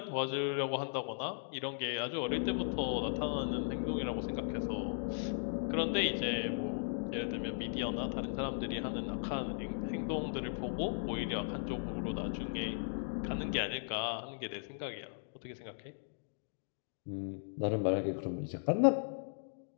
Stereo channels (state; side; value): silent; right; digital silence